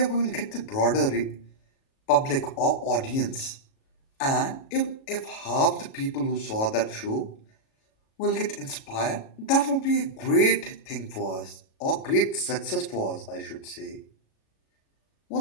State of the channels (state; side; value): late; right; 37 ms